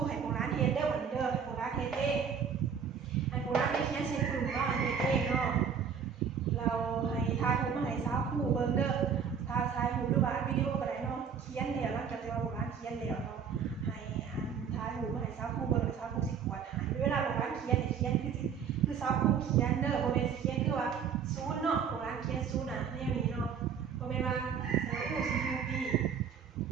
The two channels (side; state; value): left; quieter; 7.1 dB